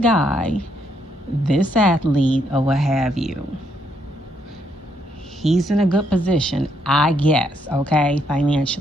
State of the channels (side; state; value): both; normal; correlation 0.73